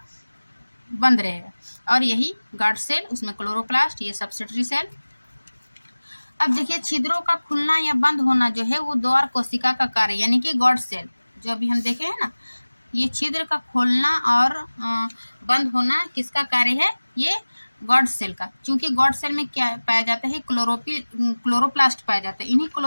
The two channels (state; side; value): inverted; both; correlation -1.00